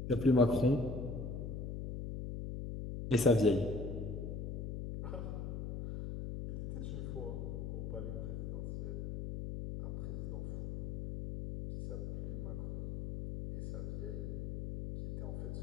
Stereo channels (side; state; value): left; noise; hum, 5 dB below the sound